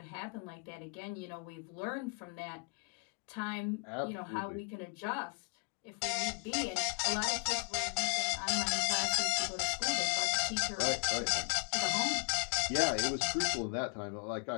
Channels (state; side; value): quieter; right; 36.6 dB